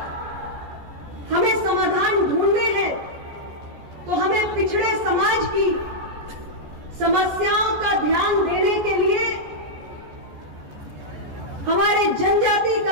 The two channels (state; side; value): late; left; 14 ms